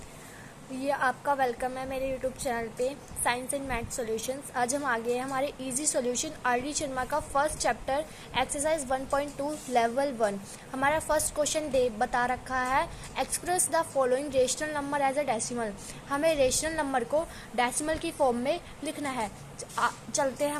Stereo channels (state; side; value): identical; both; correlation 1.00